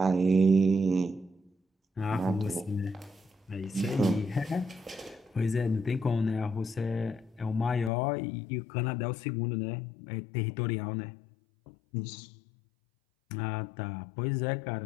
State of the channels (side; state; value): right; drops out; at 7.9 s